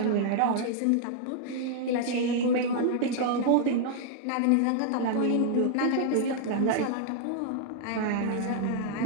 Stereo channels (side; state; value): both; different; correlation 0.00